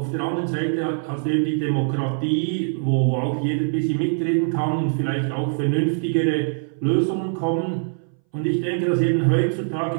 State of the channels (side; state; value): left; silent; 61 dB below the other